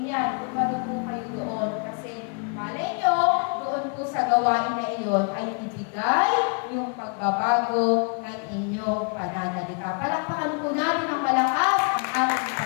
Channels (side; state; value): right; quieter; 38.4 dB